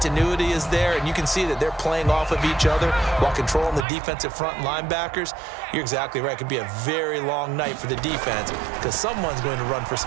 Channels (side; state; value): left; drops out; at 3.9 s